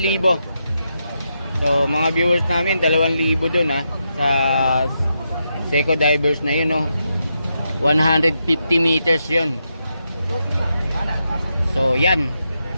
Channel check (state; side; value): inverted; both; correlation -0.84